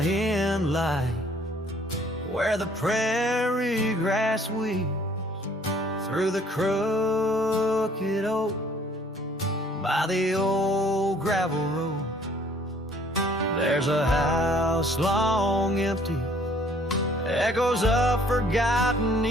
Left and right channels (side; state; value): both; normal; correlation 0.59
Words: light, where the prairie grass weaves through the crooked oak by the old gravel road, there's a house long empty, echoes of forgotten